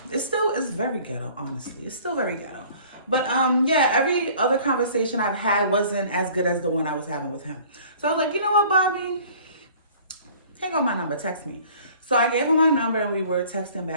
It's very ghetto, honestly. It's still very ghetto. But yeah, every other conversation I've had wasn't as good as the one I was having with him. So I was like, you know what, Bobby? Take on my number, text me. So I gave him my number and we were texting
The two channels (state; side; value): inverted; both; correlation -0.51